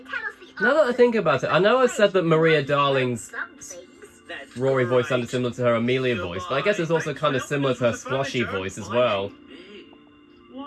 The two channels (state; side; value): identical; both; correlation 1.00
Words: us the Now that I answer think about it, I know I said that Maria Darling's some things. That's Rory voice right. sounded similar to her Amelia voice, but I guess it's also kind of similar to her Sploshy voice as well. Hey,